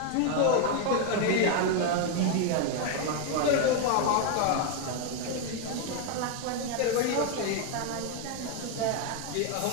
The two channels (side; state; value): both; different; correlation 0.01